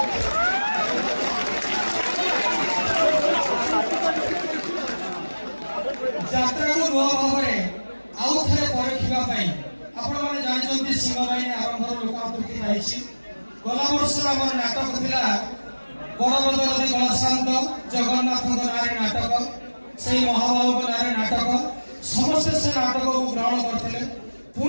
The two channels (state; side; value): inverted; both; correlation -1.00